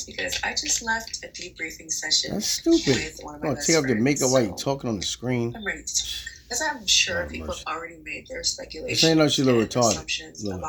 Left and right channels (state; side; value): identical; both; correlation 1.00